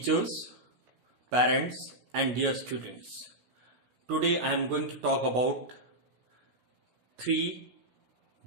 parents and dear students. Today I am going to talk about 3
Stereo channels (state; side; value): late; left; 16 ms